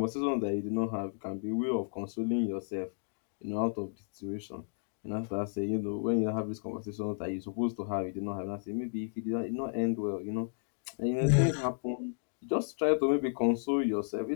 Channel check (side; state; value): right; silent; digital silence